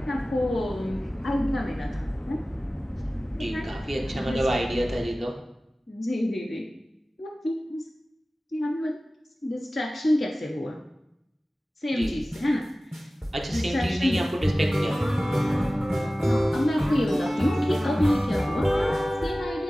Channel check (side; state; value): both; normal; correlation 0.97